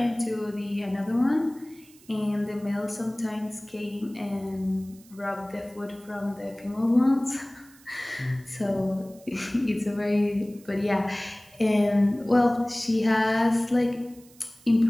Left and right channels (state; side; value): noise; right; hiss, 26 dB below the sound